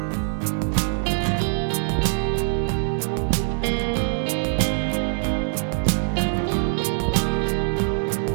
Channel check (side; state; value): left; silent; digital silence